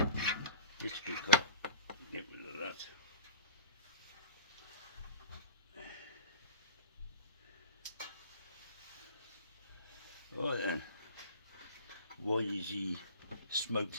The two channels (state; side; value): inverted; both; correlation -0.41